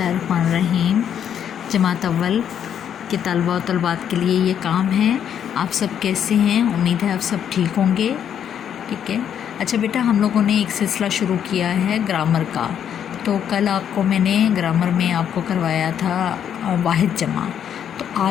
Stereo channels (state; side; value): quieter; right; 9.0 dB